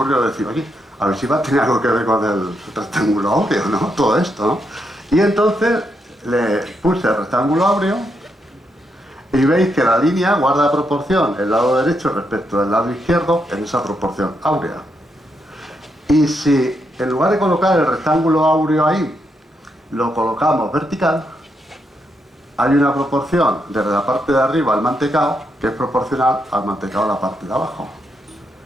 decir, oye, a ver si va a tener algo que ver con el rectángulo áureo, ¿no? Todo esto, ¿no? Y entonces le puse el rectángulo áureo y veis que la línea guarda proporción el lado derecho respecto al lado izquierdo en esa proporción áurea. Y si en lugar de colocar el rectángulo áureo ahí, lo colocamos vertical, hay una proporción desde la parte de arriba al mantecao que es proporcional al mantecao a la parte de abajo.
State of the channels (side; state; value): both; normal; correlation 0.80